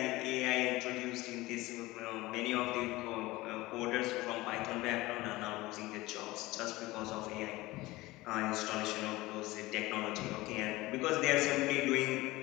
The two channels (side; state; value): right; quieter; 19.6 dB